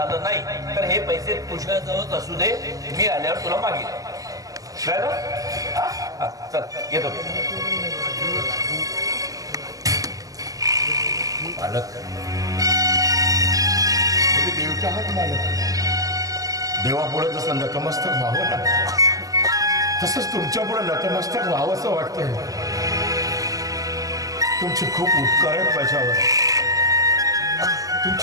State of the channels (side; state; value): left; late; 0.17 ms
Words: नाही तर हे पैसे तुझ्याजवळच असू दे, मी आल्यावर तुला मागेल. कळलं? हां चल येतो. मालक तुम्ही देवच्या आहात मालक. देवापुढे जसं नतमस्तक व्हावं ना तसंच तुमच्यापुढे नतमस्तक व्हावं असं वाटतंय. तुमचे खूप उपकार आहेत माझ्यावर.